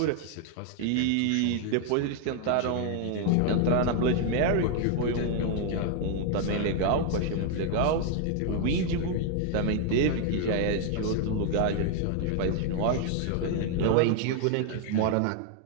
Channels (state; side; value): different; both; correlation 0.00